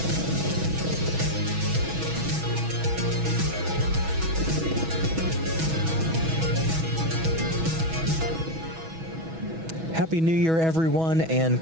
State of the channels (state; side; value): late; left; 6.1 ms